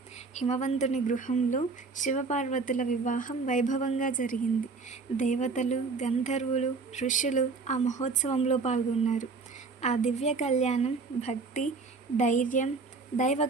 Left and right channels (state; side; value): quieter; left; 4.3 dB